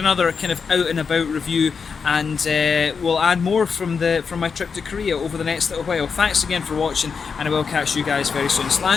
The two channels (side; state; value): right; quieter; 5.7 dB